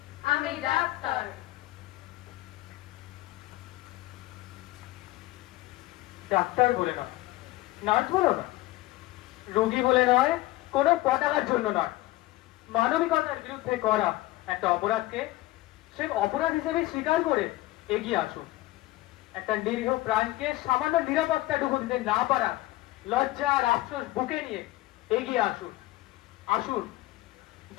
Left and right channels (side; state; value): right; quieter; 17.8 dB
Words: আমি ডাক্তার। ডাক্তার বলে নয়, নার্স বলো না, রোগী বলে নয়, কোনো পতাকার জন্য নয়, মানবিকতার বিরুদ্ধে করা একটা অপরাধকে সে অপরাধ হিসেবে স্বীকার করে এগিয়ে আসুন। একটা নিরীহ প্রাণকে সামান্য নিরাপত্তাটুকু দিতে না পারা লজ্জা আর আফসোস বুকে নিয়ে এগিয়ে আসুন। আসুন,